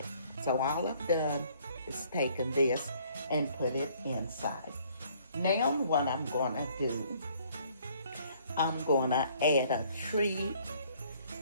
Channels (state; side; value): inverted; both; correlation -0.61